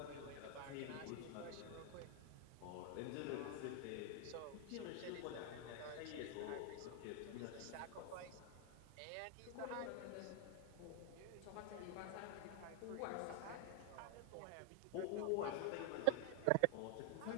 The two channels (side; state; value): both; different; correlation 0.00